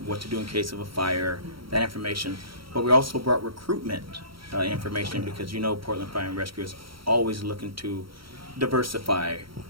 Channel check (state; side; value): late; left; 0.74 ms